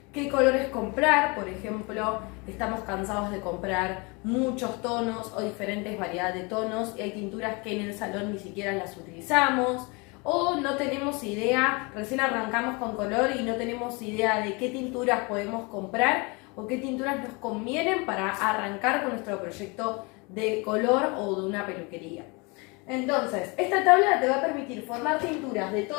qué colores comprar. Por ejemplo, estamos cansados de comprar muchos tonos o diferentes variedades de tonos y hay tinturas que en el salón ni siquiera las utilizamos, o no tenemos idea, recién arrancamos con color y no tenemos idea de qué tinturas podemos comprar o qué tinturas nos convienen para arrancar con nuestro proyecto de color o de una peluquería. Entonces, esta tabla te va a permitir formar tinturas de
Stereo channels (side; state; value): right; quieter; 28.8 dB